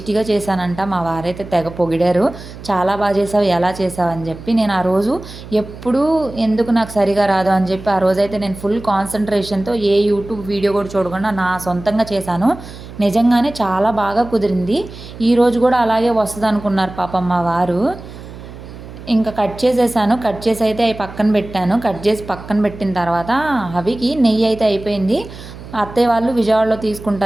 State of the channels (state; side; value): noise; right; hum, 15 dB below the sound